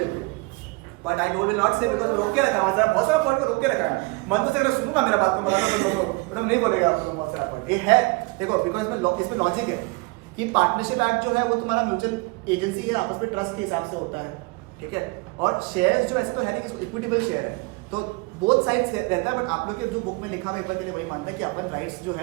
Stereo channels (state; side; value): quieter; left; 26.5 dB